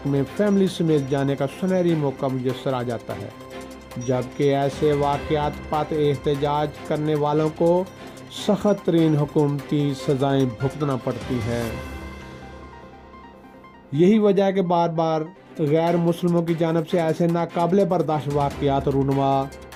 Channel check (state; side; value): identical; both; correlation 1.00